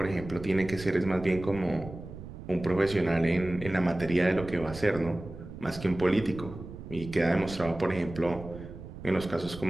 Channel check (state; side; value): noise; right; rumble, 12 dB below the sound